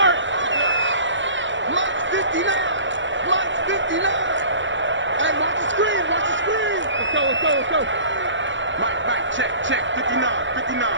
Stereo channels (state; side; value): late; left; 0.54 ms